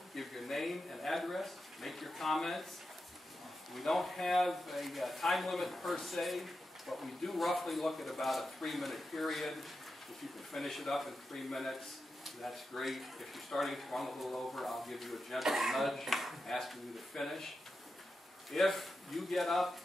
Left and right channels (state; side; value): normal; both; correlation 0.89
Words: give your name and address, make your comments. We don't have a time limit per se, but we do roughly look at about a 3-minute period. If you can finish it up in 3 minutes, that's great. If you're starting to run a little over, I'll give you a gentle nudge asking you to finish. If you get up